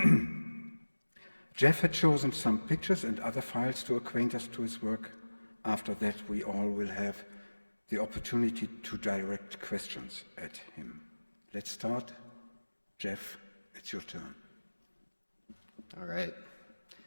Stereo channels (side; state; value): both; inverted; correlation -1.00